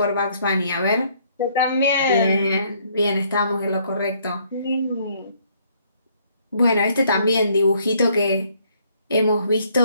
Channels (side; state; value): both; inverted; correlation -0.66